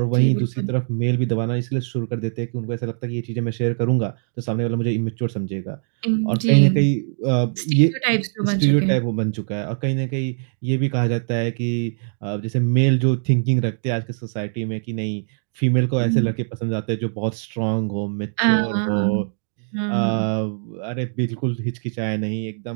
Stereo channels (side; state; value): left; silent; digital silence